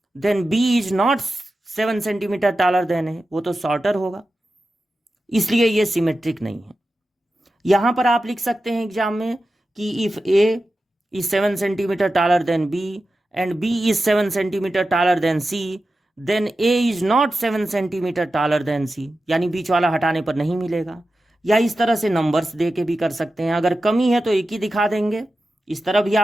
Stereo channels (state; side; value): normal; both; correlation 0.92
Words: then B is not 7 centimetre taller than है, वो तो शॉर्टर होगा, इसलिए ये सिमेट्रिक नहीं है। यहां पर आप लिख सकते हैं एग्जाम में कि if A is 7 centimetre taller than b and b is 7 centimetre taller than c, then a is not 7 centimetre taller than c, यानी बीच वाला हटाने पर नहीं मिलेगा। या इस तरह से नंबर्स दे के भी कर सकते हैं। अगर कमी है तो एक ही दिखा देंगे, इस तरह भी